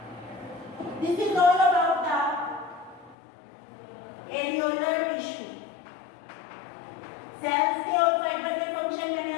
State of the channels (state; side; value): drops out; right; at 3.2 s